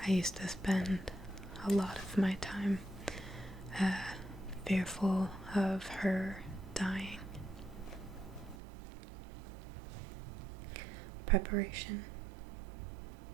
I used to spend a lot of my time fearful of her dying. Preparation.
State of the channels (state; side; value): drops out; left; at 8.6 s